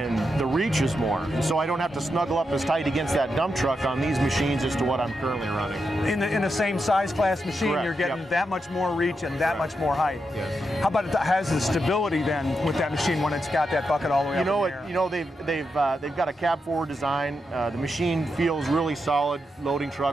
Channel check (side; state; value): both; normal; correlation 0.85